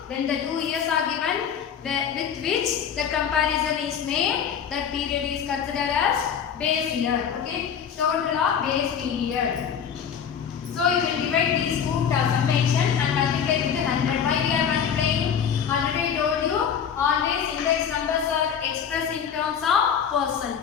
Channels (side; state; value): right; quieter; 7.8 dB